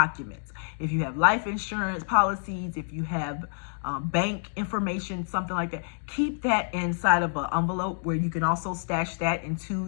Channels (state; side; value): silent; right; digital silence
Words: If you have life insurance policies, if you have bank information, something like that, keep that inside of an envelope where you can also stash that into